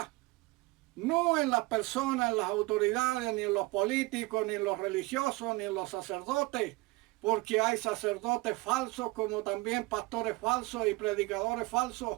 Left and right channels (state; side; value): quieter; left; 22.7 dB